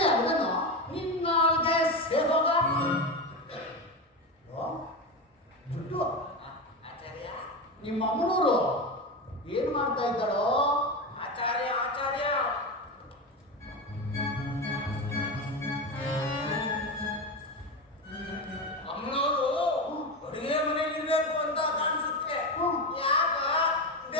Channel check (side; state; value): both; normal; correlation 0.19